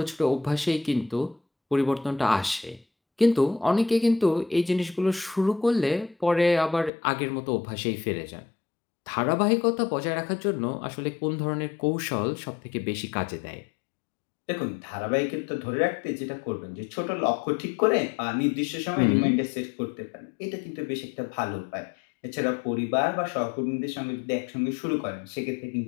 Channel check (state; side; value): drops out; right; at 6.9 s